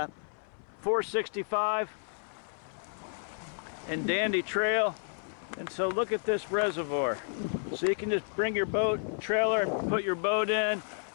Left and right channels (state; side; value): silent; right; 57 dB below the other